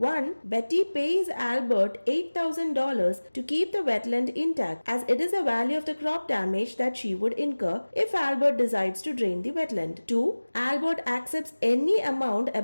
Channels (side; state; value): both; inverted; correlation -1.00